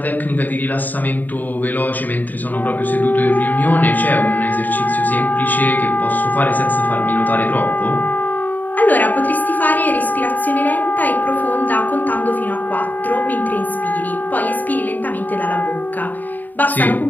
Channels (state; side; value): late; right; 0.086 ms